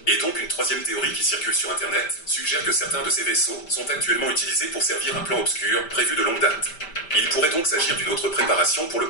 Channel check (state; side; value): late; right; 5.1 ms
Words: Et donc une troisième théorie qui circule sur Internet suggère que certains de ces vaisseaux sont actuellement utilisés pour servir un plan obscur prévu de longue date. Il pourrait donc s'agir d'une autre préparation pour le